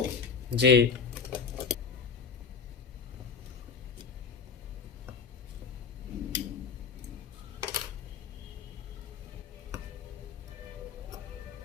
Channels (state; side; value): quieter; right; 5.8 dB